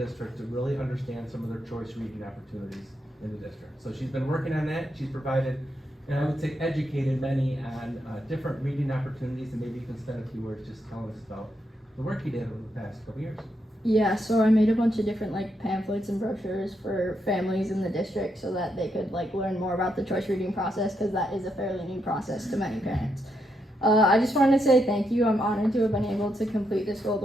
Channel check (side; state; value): both; normal; correlation 0.81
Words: to really understand some of their choice reading opportunities in the district. So she's been working on that. She's provided, and I would say educated many on different reading opportunities, and maybe you can spend a few words just telling us about the work you did over the past couple years. Yeah, so I made a bunch of different pamphlets and brochures for families in the district so that they could learn more about the choice reading process, because that is a fairly new process to many parents. I just wanted to say thank you. I'm honored to have been able to complete this Gold